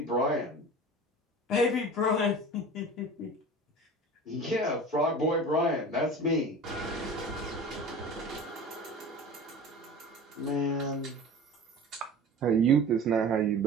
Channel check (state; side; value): normal; both; correlation 0.37